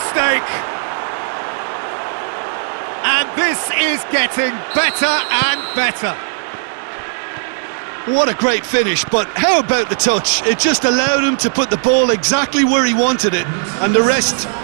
And this is getting better and better. What a great finish, but how about the touch? It just allowed him to put the ball exactly where he wanted it, and the rest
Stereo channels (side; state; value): left; silent; digital silence